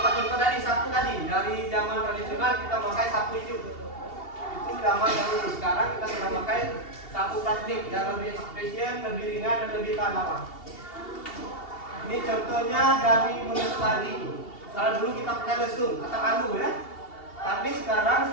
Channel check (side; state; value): right; late; 2.8 ms